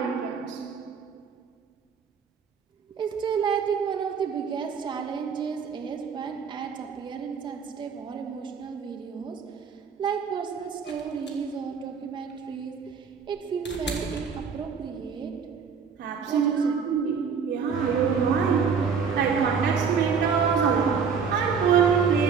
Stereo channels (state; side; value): quieter; left; 6.2 dB